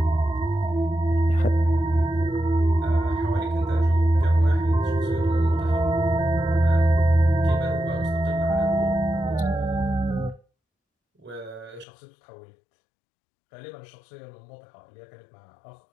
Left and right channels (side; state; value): right; drops out; at 11.9 s